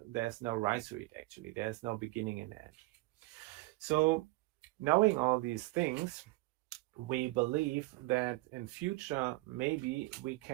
there's no rhizoid actually. There's no beginning and end. So knowing all these things, we believe that in future, maybe we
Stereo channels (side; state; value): left; quieter; 21.3 dB